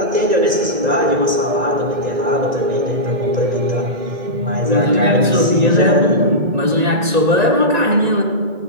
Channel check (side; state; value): left; late; 1.9 ms